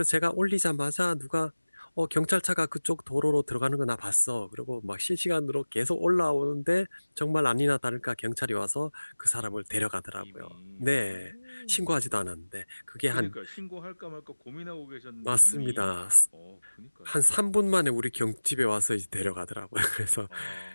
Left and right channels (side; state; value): both; inverted; correlation -1.00